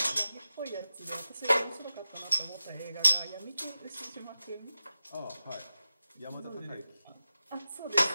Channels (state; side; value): inverted; both; correlation -0.94